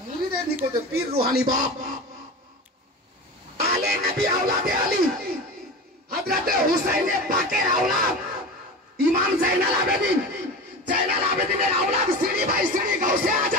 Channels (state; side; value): normal; both; correlation 0.29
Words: মুরিদের নিকটে পীর রুহানি বাপ। আলে নবী আওলাদে আলী, হযরতে হুসাইনে পাকের আওলাদ ইমাম জাইনাল আবেদিন, জাইনাল আবেদিনের আওলাদ সিঁড়ি বাই সিঁড়ি গাউসে